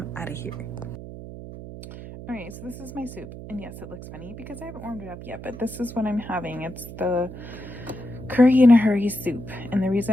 out of here. All right, so this is my soup. And yes, it looks funny because I haven't warmed it up yet, but this is what I'm having. It's the curry in a hurry soup. And the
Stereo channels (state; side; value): noise; right; hum, 12 dB below the sound